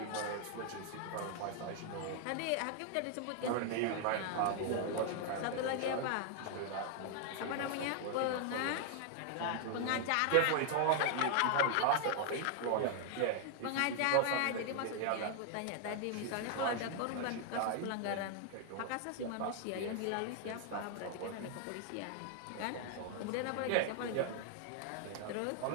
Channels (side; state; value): both; different; correlation 0.00